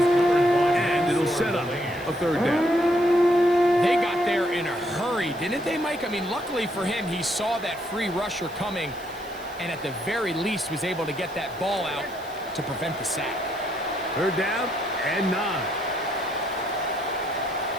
it'll set up a 3rd down. They got there in a hurry, didn't they, Mike? I mean, luckily for him, he saw that free rusher coming, and at the very least was able to get that ball out to prevent the sack. 3rd down and 9.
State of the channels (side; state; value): right; noise; hiss, 23 dB below the sound